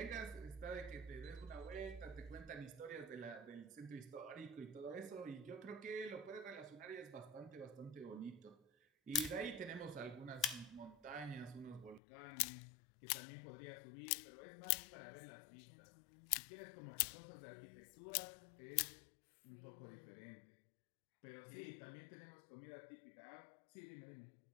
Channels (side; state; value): right; drops out; at 12.0 s